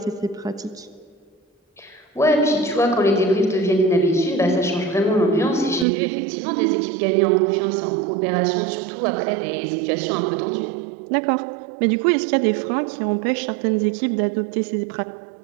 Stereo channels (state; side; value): drops out; left; at 5.9 s